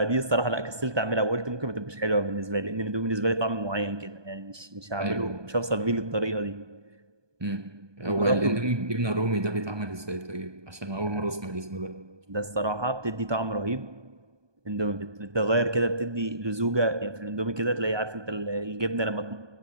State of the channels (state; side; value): late; left; 1.2 ms